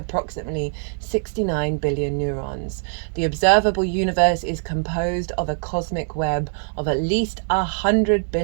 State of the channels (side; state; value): left; silent; 57 dB below the other